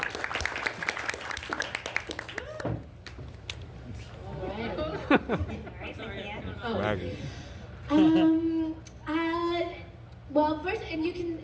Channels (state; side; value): identical; both; correlation 1.00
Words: Well, first, and you can